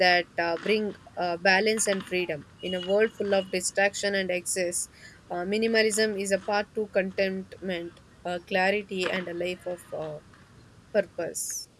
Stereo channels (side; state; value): both; identical; correlation 1.00